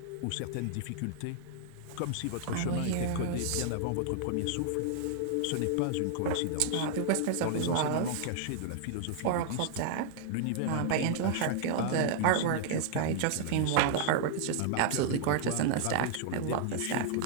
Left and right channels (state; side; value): different; both; correlation -0.01